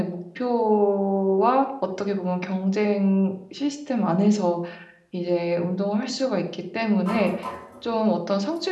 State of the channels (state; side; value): identical; both; correlation 1.00